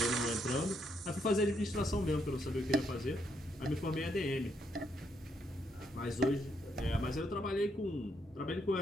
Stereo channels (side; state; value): both; normal; correlation 0.76